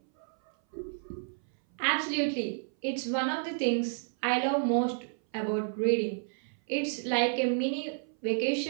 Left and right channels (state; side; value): silent; left; 57 dB below the other